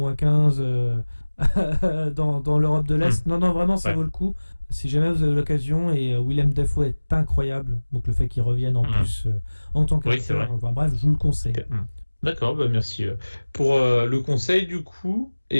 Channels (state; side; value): inverted; both; correlation -1.00